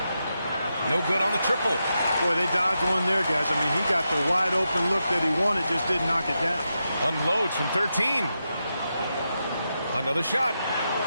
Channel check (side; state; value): both; inverted; correlation -0.87